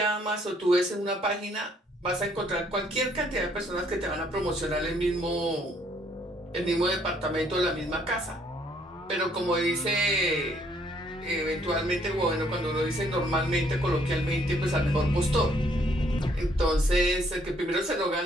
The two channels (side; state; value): both; normal; correlation 0.66